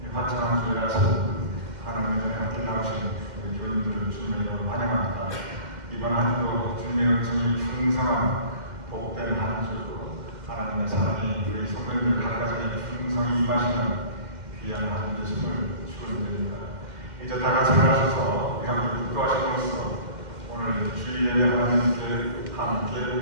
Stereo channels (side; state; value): left; late; 2.1 ms